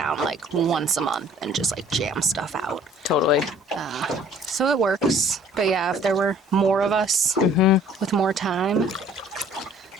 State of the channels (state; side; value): normal; both; correlation 0.54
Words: like once a month and just like jam stuff out. Totally. So it works. But yeah, if there were more of us with more time,